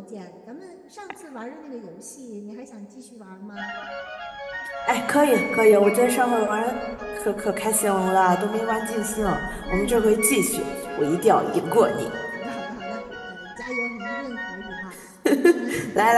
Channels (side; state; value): both; identical; correlation 1.00